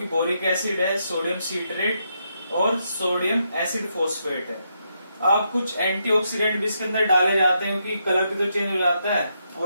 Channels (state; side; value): inverted; both; correlation -0.80